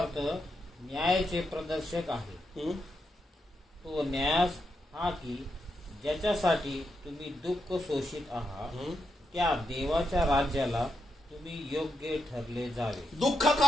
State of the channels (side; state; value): both; normal; correlation 0.83